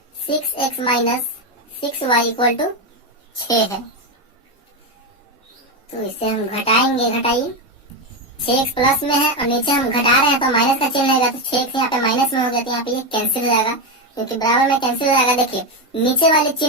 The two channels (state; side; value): normal; both; correlation 0.10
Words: 6x माइनस 6y = 6 है। तो इसे हम घटाएंगे, घटाइए 6x प्लस में है और नीचे हम घटा रहे हैं तो माइनस का चिन्ह रहेगा, तो 6x यहाँ पे माइनस में हो गया, तो यहाँ पे ये कैंसिल हो जाएगा क्योंकि बराबर में कैंसिल हो जाएगा। देखिए नीचे वाले